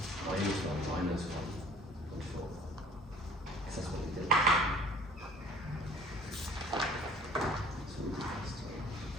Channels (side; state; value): both; normal; correlation 0.51